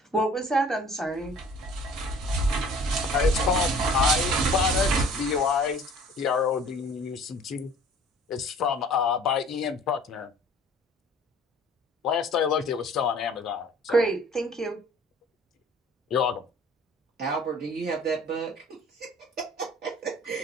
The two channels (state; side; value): normal; both; correlation 0.50